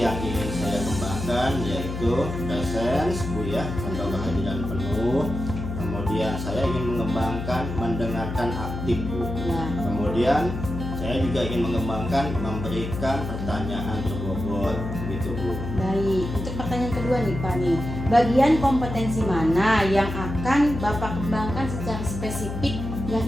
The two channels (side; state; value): left; noise; hum, 6 dB below the sound